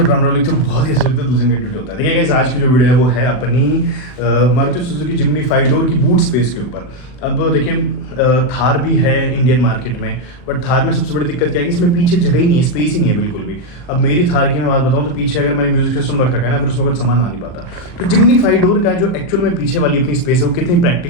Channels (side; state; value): right; late; 39 ms